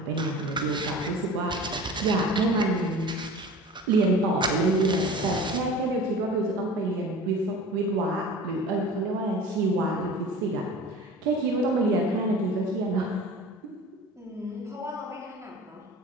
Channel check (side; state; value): both; normal; correlation 0.39